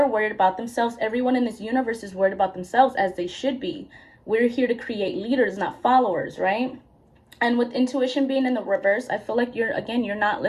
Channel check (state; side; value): identical; both; correlation 1.00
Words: worried about themselves. Everyone in this universe is worried about themselves, as they should be. We're here to create leaders, not followers, right? And with intuition being in the reverse, I feel like you're not